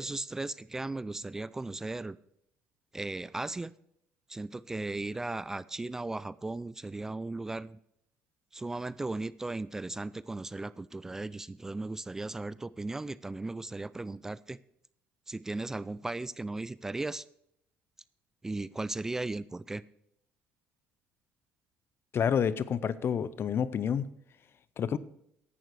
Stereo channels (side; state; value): both; normal; correlation 0.81